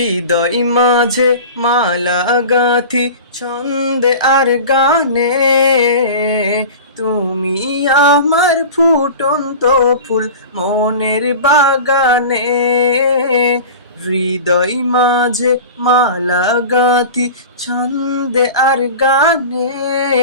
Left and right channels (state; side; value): inverted; both; correlation -0.34